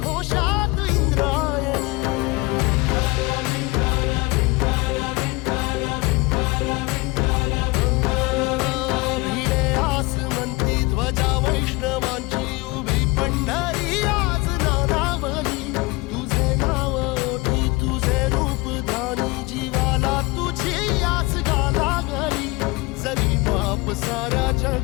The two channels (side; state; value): right; quieter; 24.1 dB